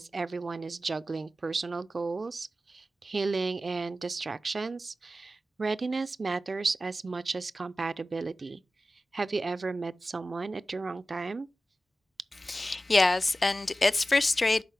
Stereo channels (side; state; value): both; normal; correlation 0.94